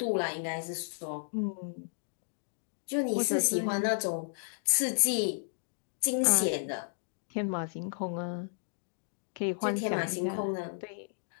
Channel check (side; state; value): right; silent; digital silence